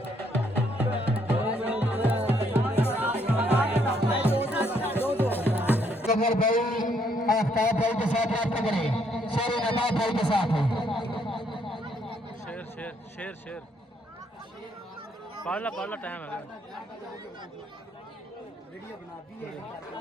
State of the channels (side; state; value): both; normal; correlation 0.70